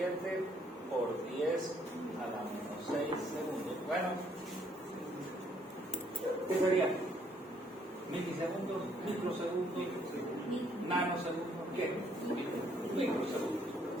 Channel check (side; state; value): both; normal; correlation 0.67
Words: por 10 a la menos 6 segundos. Bueno, ¿qué sería? ¿Milisegundos? ¿Microsegundos? ¿Nanosegundos? ¿Qué? Microsegundos.